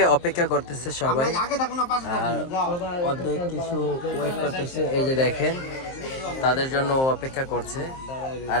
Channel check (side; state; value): right; late; 23 ms